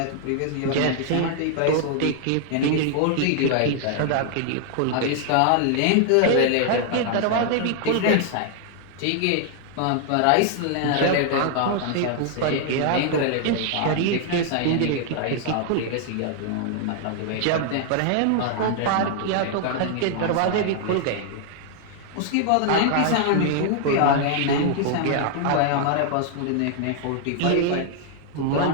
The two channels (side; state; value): both; different; correlation 0.00